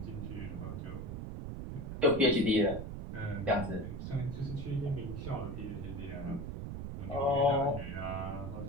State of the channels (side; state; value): right; noise; rumble, 6 dB below the sound